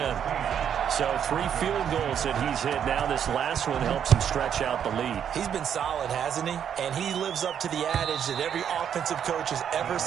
So 3 field goals that he's hit now. This last one helps him stretch out the lead. He's been solid, hasn't he? And he lives up to the adage that every offensive coach has ever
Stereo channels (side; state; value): left; quieter; 8.7 dB